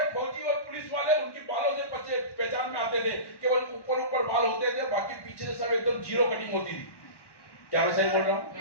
फौजी और पुलिस वाले उनकी बालों से पहचान में आते थे, केवल ऊपर ऊपर बाल होते थे, बाकी पीछे से सब एकदम जीरो कटिंग होती थी। क्या मैं सही बोल रहा हूँ?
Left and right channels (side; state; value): right; late; 1.1 ms